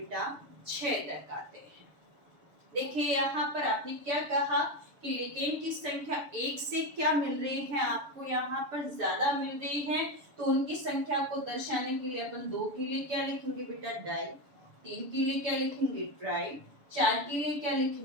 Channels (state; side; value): late; left; 6.9 ms